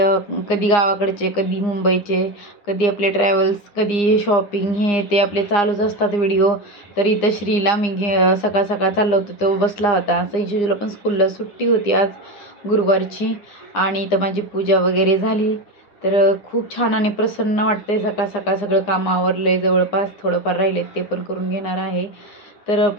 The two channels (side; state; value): right; late; 9.8 ms